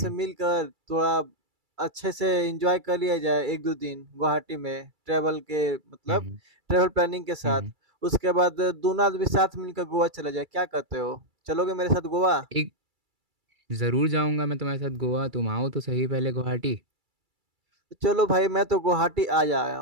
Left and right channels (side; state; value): left; late; 2.3 ms